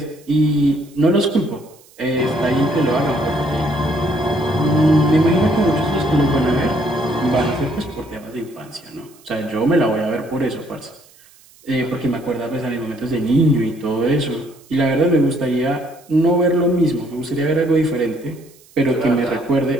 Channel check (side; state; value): right; noise; hiss, 27 dB below the sound